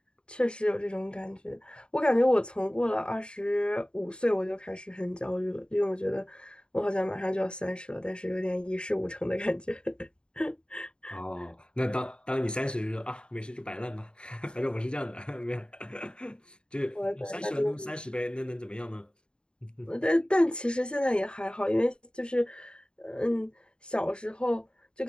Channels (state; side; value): late; right; 0.051 ms